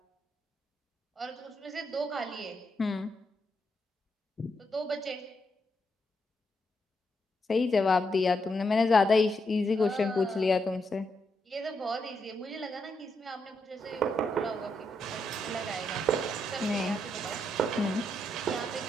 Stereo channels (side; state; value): both; normal; correlation 0.80